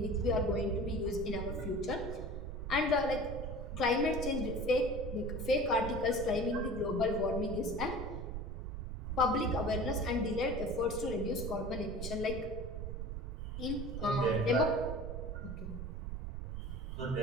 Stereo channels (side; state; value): right; noise; rumble, 5 dB below the sound